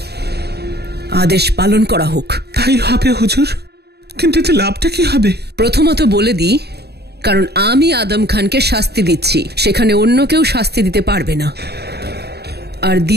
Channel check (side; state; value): left; late; 0.47 ms